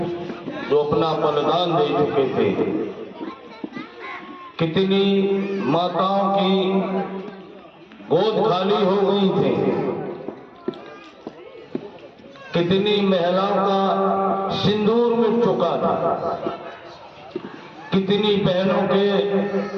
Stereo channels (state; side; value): identical; both; correlation 1.00